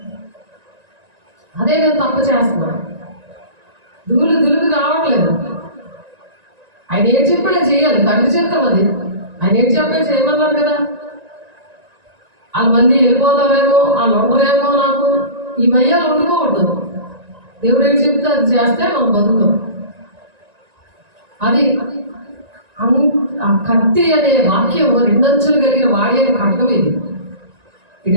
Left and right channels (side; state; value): left; late; 1.9 ms